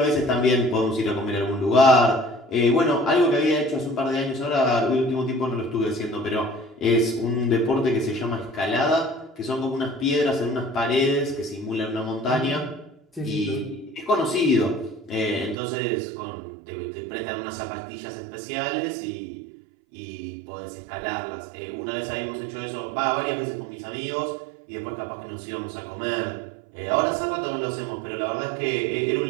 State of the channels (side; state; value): left; drops out; at 15.6 s